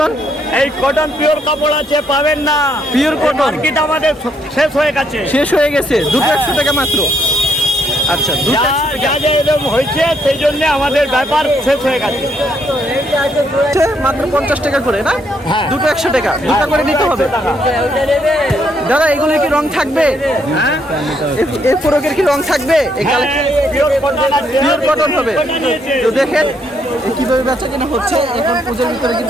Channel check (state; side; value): normal; both; correlation 0.73